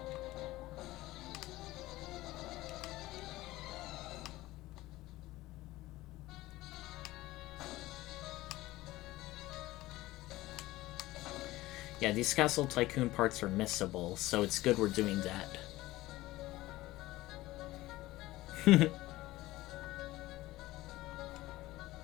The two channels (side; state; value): right; quieter; 17.7 dB